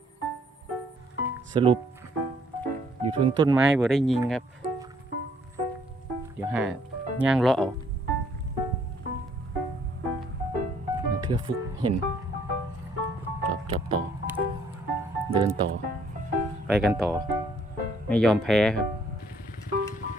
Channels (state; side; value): normal; both; correlation 0.64